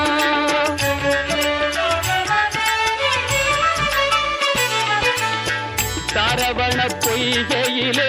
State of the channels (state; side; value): identical; both; correlation 1.00